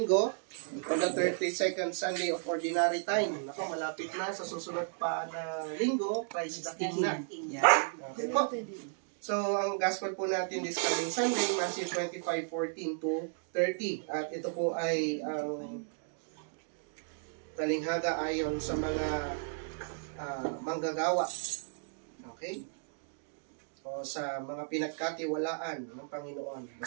on the 32nd Sunday of Ordinary Time. Naku, malapit na sa susunod pa na linggo, Christ the King na. Okay po. So, ang gospel po natin this coming Sunday, Matthew 25:14-30. At ito po ay ang talinghaga ayon sa mga manggagawa. Okay? O sa mga pinagkatiwalaan ng Panginoon.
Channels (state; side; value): silent; left; digital silence